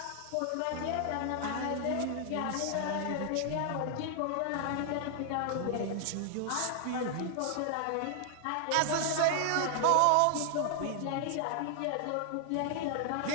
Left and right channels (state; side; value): different; both; correlation 0.00